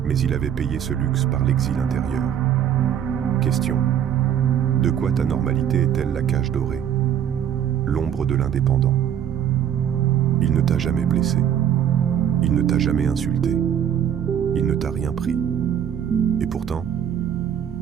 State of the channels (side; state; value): left; quieter; 9.4 dB